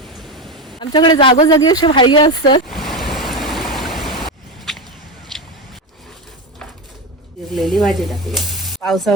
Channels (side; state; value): both; normal; correlation 0.17